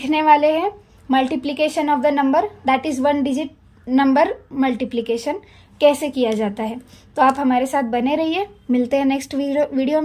वाले हैं multiplication of the number, that is 1 digit number multiplication कैसे किया जाता है। तो आप हमारे साथ बने रहिए। मिलते हैं नेक्स्ट वीडियो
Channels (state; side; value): identical; both; correlation 1.00